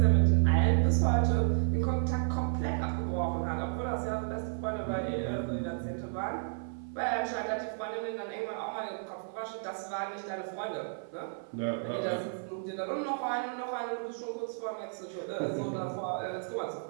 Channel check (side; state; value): left; silent; 56 dB below the other